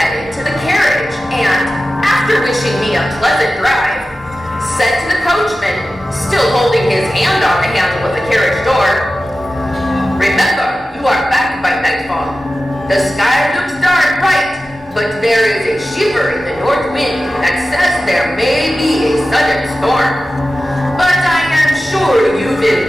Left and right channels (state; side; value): normal; both; correlation 0.94